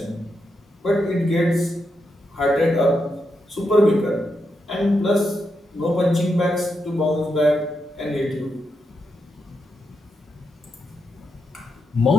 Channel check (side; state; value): both; normal; correlation 0.84